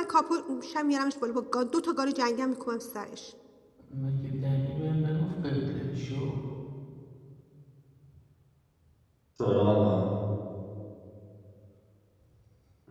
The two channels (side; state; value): both; identical; correlation 1.00